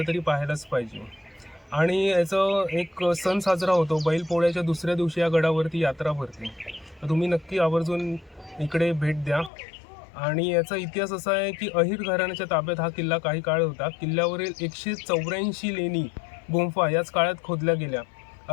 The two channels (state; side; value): drops out; right; at 9.5 s